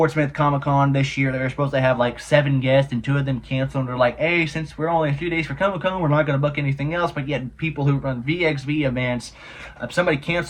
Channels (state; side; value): identical; both; correlation 1.00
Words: Smith Comic Con this year, they're supposed to have like 7 guests, and 2 of them canceled. And they're like, hey, since we're only a few days for Comic Con, we're not going to book anything else. But yet, people who run VXV events, if somebody